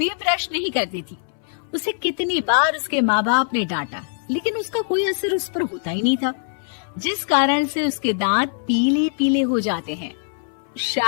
ब्रश नहीं करती थी। उसे कितनी बार उसके माँ बाप ने डांटा, लेकिन उसका कोई असर उस पर होता ही नहीं था, जिस कारण से उसके दांत पीले पीले हो जाते हैं।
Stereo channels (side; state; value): right; silent; 64 dB below the other